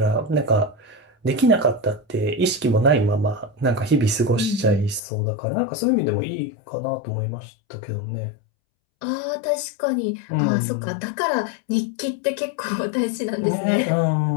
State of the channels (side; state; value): right; drops out; at 5.0 s